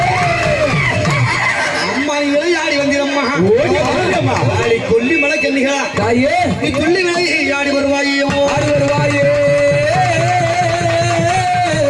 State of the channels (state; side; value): identical; both; correlation 1.00